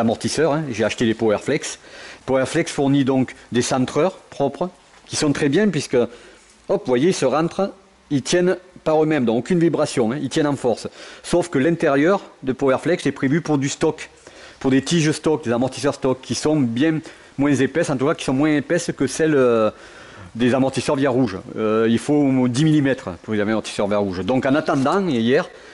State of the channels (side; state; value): both; identical; correlation 1.00